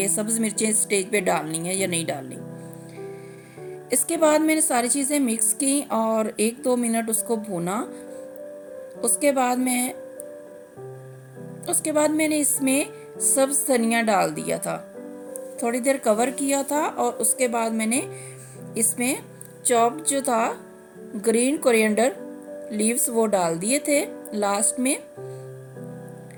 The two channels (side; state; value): both; identical; correlation 1.00